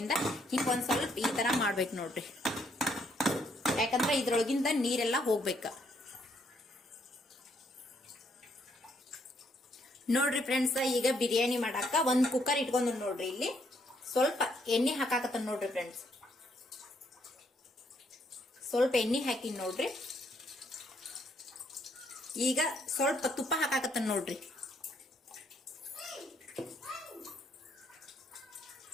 ಹಿಂಗ್ ಒಂದ್ ಸ್ವಲ್ಪ ಈ ತರ ಮಾಡ್ಬೇಕು ನೋಡ್ರಿ, ಯಾಕಂದ್ರೆ ಇದ್ರೊಳಗಿಂದ ನೀರೆಲ್ಲಾ ಹೋಗ್ಬೇಕ ನೋಡ್ರಿ ಫ್ರೆಂಡ್ಸ್. ಈಗ ಬಿರಿಯಾನಿ ಮಾಡಾಕ ಒಂದ್ ಕುಕ್ಕರ್ ಇಟ್ಕೊಂಡ್ ನೋಡ್ರಿ. ಇಲ್ಲಿ ಸ್ವಲ್ಪ ಎಣ್ಣೆ ಹಾಕಾಕತ್ತ ನೋಡ್ರಿ ಫ್ರೆಂಡ್ಸ್. ಸ್ವಲ್ಪ ಎಣ್ಣೆ ಹಾಕಿನ್ ನೋಡ್ರಿ. ಈಗ ಸ್ವಲ್ಪ ತುಪ್ಪ ಹಾಕಾಕತ್ತ ನೋಡ್ರಿ.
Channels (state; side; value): normal; both; correlation 0.71